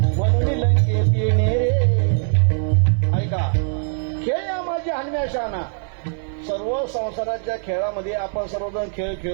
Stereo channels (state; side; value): silent; left; 65 dB below the other